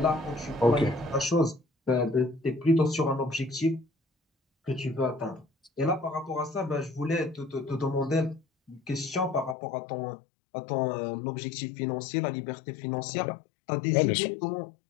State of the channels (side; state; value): right; drops out; at 9.6 s